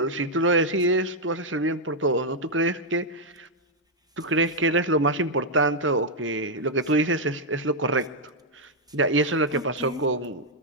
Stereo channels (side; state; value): both; normal; correlation -0.02